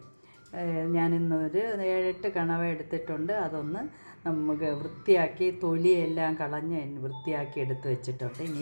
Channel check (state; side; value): inverted; both; correlation -1.00